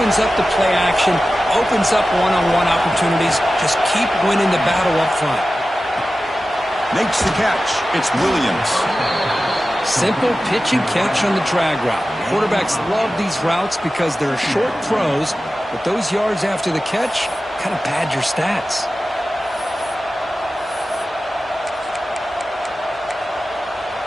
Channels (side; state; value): both; normal; correlation 0.94